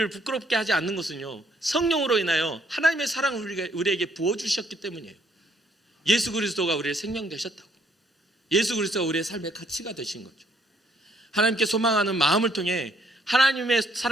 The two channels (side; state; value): both; normal; correlation 0.66